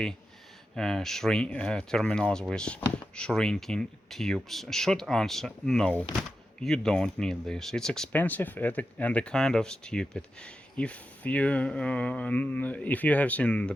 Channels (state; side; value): normal; both; correlation 0.90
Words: terminals with shrinking tubes. Short answer: no, you don't need this. It's expensive and a kind of stupid. If you have seen the